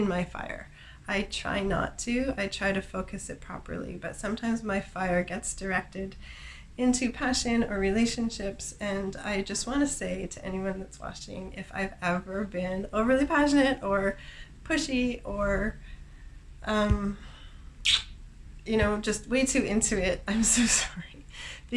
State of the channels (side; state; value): both; identical; correlation 1.00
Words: my fire. I try not to. I try to focus it properly, but sometimes my fire gets directed into passion or relationships, and I just want to say to anyone that's watching, if I've ever been overly passionate or pushy or just way too into it, I'm so sorry,